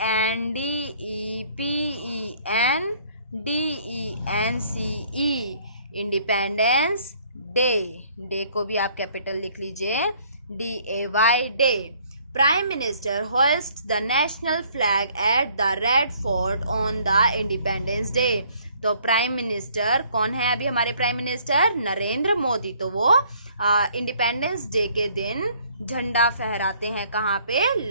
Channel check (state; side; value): inverted; both; correlation -0.60